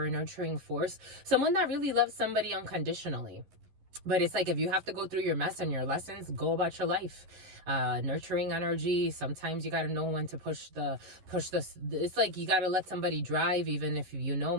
a nurturing force. Someone that really loves somebody unconditionally. But it's like, if you have to go through your mess and your lessons, go about your life. Nurturing energy. Sometimes you got to know when to push the, it's like you got to let somebody drive, even if you know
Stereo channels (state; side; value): late; left; 11 ms